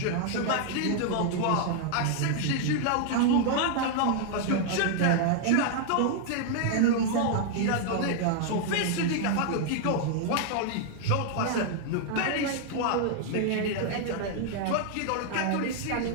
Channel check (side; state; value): both; different; correlation 0.00